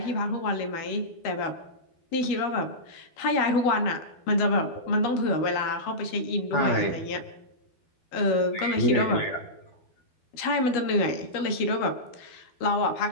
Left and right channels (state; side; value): late; right; 12 ms